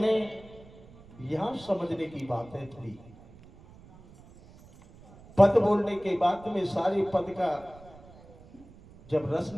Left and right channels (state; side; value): noise; right; rumble, 22 dB below the sound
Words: यहां समझने की बात है थोड़ी। पद बोलने के बाद में सारे पद का जब रस